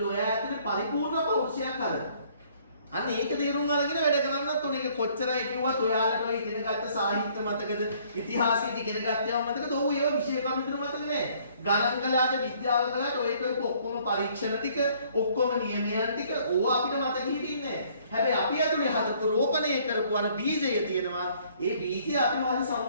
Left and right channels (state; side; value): inverted; both; correlation -0.61